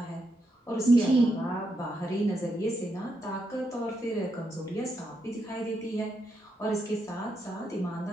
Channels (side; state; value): both; normal; correlation 0.82